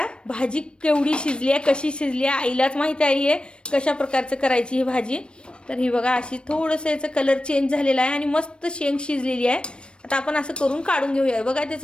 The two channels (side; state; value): right; late; 0.056 ms